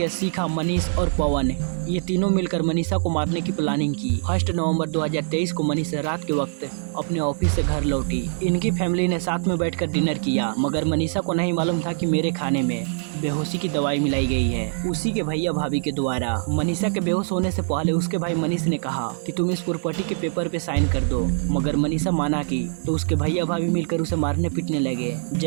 शिखा, मनीष और पवन ये तीनों मिलकर मनीषा को मारने की प्लानिंग की। 1 नवंबर 2023 को मनीषा रात के वक्त अपने ऑफिस से घर लौटी। इनकी फैमिली ने साथ में बैठकर डिनर किया, मगर मनीषा को नहीं मालूम था कि मेरे खाने में बेहोशी की दवाई मिलाई गई है, उसी के भैया भाभी के द्वारा। मनीषा के बेहोश होने से पहले उसके भाई मनीष ने कहा कि तुम इस प्रॉपर्टी के पेपर पे साइन कर दो, मगर मनीषा माना की तो उसके भैया भाभी मिलकर उसे मारने पीटने लगे।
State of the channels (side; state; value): left; silent; digital silence